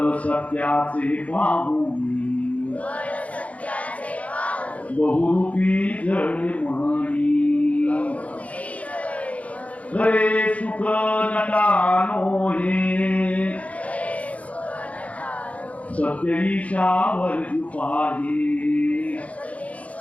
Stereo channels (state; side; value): late; right; 0.067 ms